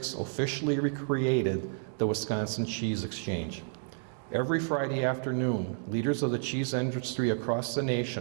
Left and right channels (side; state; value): left; silent; digital silence